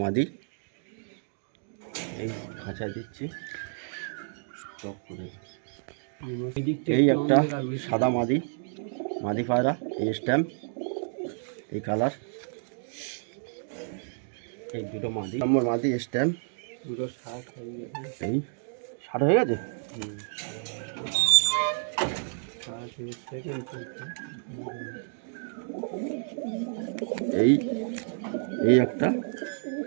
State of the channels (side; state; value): left; silent; digital silence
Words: মাদি, এই খাঁচায় দিচ্ছি। এই একটা সাদা মাদি, মাদি পায়রা, এই স্ট্যাম্প, এই কালার, এই দুটো মাদি, নম্বর মাদি স্ট্যাম্প, দুটো 60 হয়ে গেছে। এই 60 হয়ে গেছে। এই এই একটা,